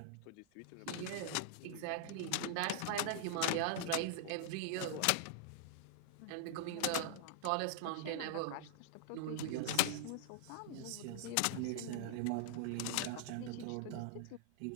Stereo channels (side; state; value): both; different; correlation -0.01